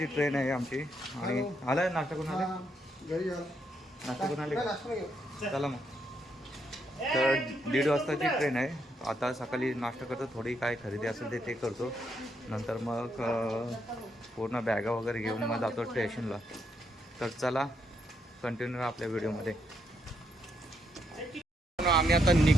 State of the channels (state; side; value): normal; both; correlation 0.77